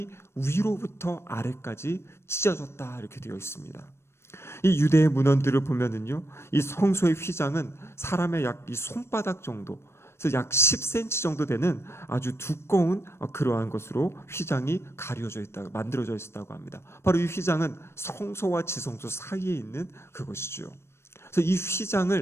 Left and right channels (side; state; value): right; late; 0.12 ms